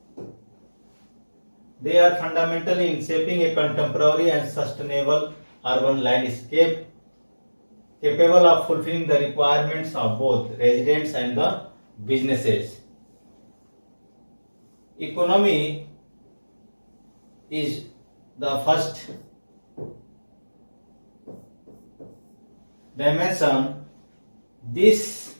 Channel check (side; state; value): both; inverted; correlation -1.00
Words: and sustainable urban landscape capable of fulfilling the requirements of both residents and the businesses. Economy is the first dimension, this